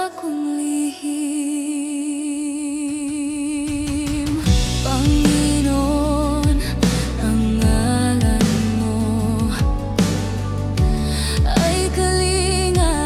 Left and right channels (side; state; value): both; identical; correlation 1.00